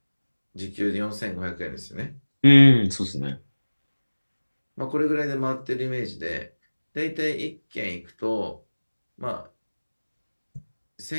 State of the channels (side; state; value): both; inverted; correlation -1.00